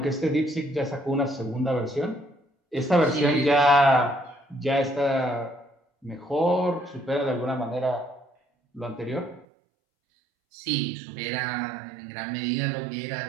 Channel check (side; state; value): left; drops out; at 9.5 s